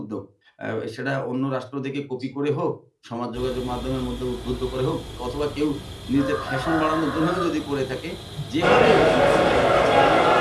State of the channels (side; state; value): both; identical; correlation 1.00